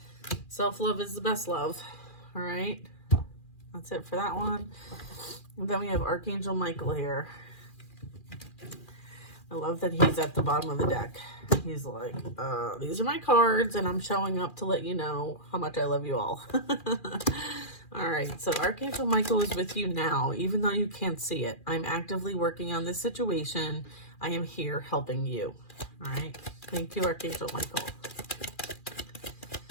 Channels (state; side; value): late; right; 2.4 ms